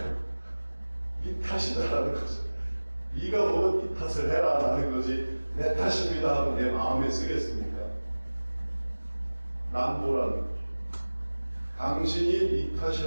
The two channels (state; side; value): inverted; both; correlation -1.00